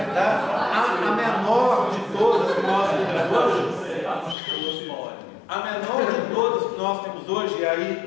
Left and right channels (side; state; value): right; drops out; at 4.4 s